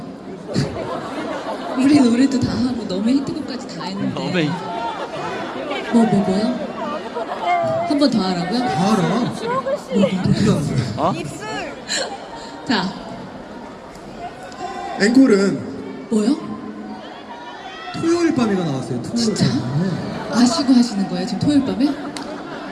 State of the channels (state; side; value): identical; both; correlation 1.00